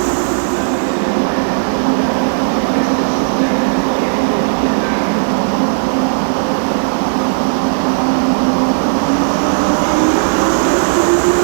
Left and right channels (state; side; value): silent; left; digital silence